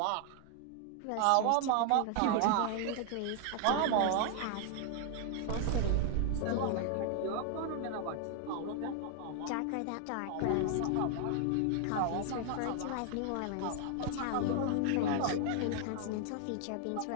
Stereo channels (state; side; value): different; both; correlation 0.00